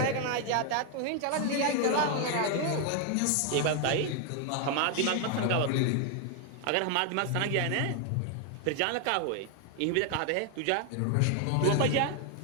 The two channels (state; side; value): different; both; correlation 0.01